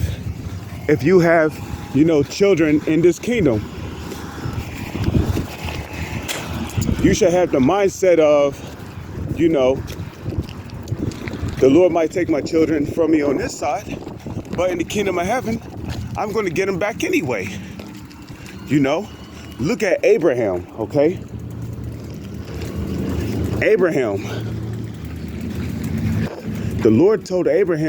if you have, you know, children in this kingdom. You should have the mindset of, you know, the Lord might take my children from me on this side, but in the kingdom of heaven, I'm going to get them back anyway. You know, look at Abraham, okay? Abraham. The Lord told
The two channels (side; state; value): both; identical; correlation 1.00